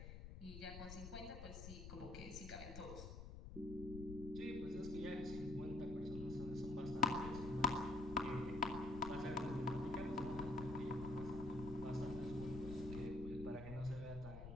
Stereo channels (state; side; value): noise; left; rumble, 9 dB below the sound